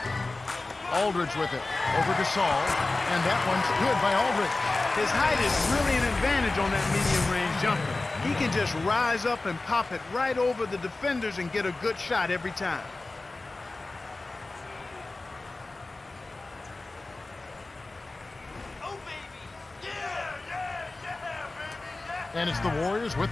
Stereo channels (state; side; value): quieter; right; 3.2 dB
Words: Aldridge with it. Over to Saul. And that one's good by Aldridge. His height is really an advantage on that medium-range jumper. He can just rise up and pop it right over the defenders and get a good shot every time. Oh, baby. Yeah, baby. And it's the Warriors with